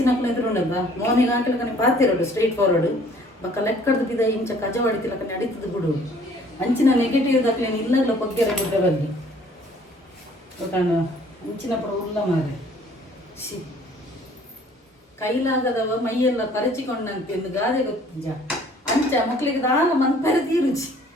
ಎದುರುಂಡದ ಮೋನಿಗೆ ಹಾಕಿಲಕನೆ ಪಾತಿರೋಡು ಸ್ಟ್ರೈಟ್ ಫಾರ್ವರ್ಡ್ ಬಕ್ಕ ಲೆಕ್ಕಡ್ದು ಬಿದ ಇಂಚ ಕಜ ಹೊಡಿತಿಲಕನೆ ಅಡಿತದ ಬಿಡು ಅಂಚಿನ ನೆಗೆಟಿವ್ ದಕ್ಲೇನು ಇಲ್ಲಲ್ಲ ಬಗ್ಗೆರ ಗುಡ್ಡ ಬಗ್ಗೆ ಗೊತ್ತಾಂಡ ಅಂಚಿನ ಪುರ ಉಲ್ಲ ಮಾರೆ ಸಿ ಕೈಲಾಗದವ ಮೈಯೆಲ್ಲ ಪರಚಿಕೊಂಡಂತೆ ಎಂದು ಗಾದೆ ಗೊತ್ತಿಂಜ ಅಂಚ ಮಕ್ಳಿಗೆ ದಾಲ ಮನ್ಪರೆ ತೀರುಚಿ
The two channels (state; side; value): normal; both; correlation 0.56